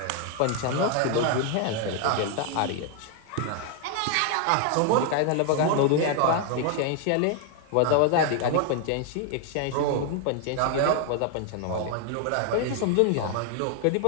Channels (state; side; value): different; both; correlation 0.00